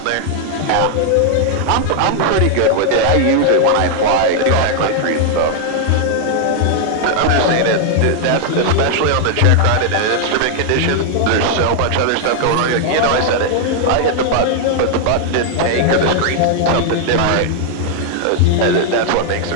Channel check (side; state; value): both; different; correlation 0.00